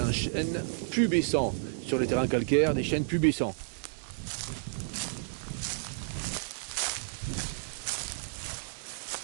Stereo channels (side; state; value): left; silent; digital silence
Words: chêne pubescent sur les terrains calcaires, des chênes pubescents.